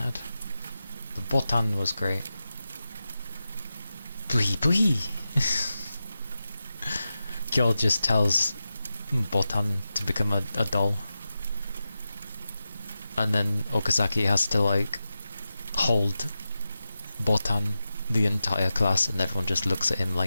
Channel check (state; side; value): inverted; both; correlation -0.92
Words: The Botan was great. Bui bui! Kyo just tells Botan to become a doll. And then Okazaki has to like hold Botan the entire class, and everyone just looks at him